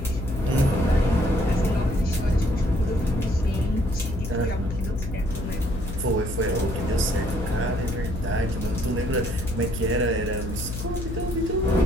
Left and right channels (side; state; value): left; noise; hum, 7 dB below the sound